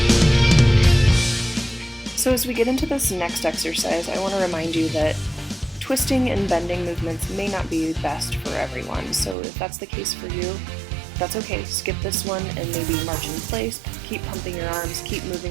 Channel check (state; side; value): drops out; left; at 9.3 s